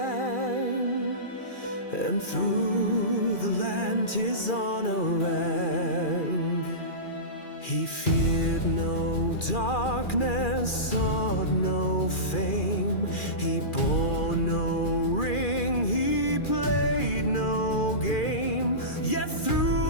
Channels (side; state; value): right; late; 2.4 ms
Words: and through the land his honor rang. He feared no darkness, sought no fame. He bore no ring, he played no game. Yet